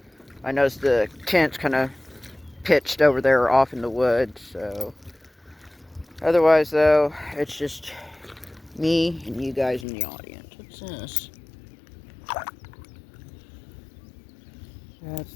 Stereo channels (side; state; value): right; drops out; at 9.9 s